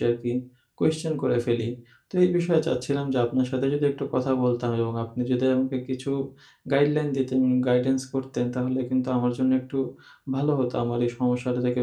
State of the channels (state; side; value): identical; both; correlation 1.00